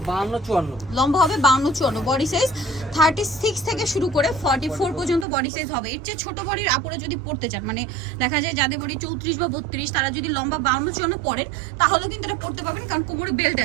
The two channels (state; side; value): drops out; left; at 5.2 s